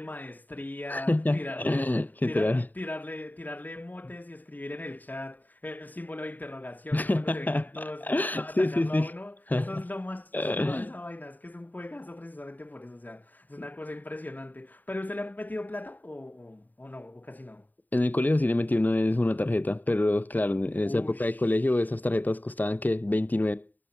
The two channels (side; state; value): right; late; 0.086 ms